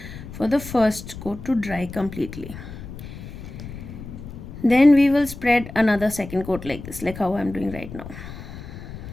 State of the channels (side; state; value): left; noise; rumble, 12 dB below the sound